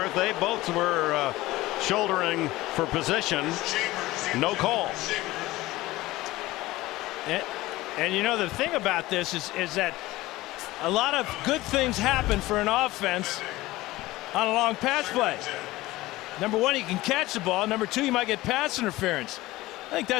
they both were shouldering for position. No call. And you know, the thing about this is that a lot of good things happen for an offense on a long pass play. Number one, you can catch the ball. Number two, you might get pass interference. I think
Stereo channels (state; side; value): quieter; right; 18.3 dB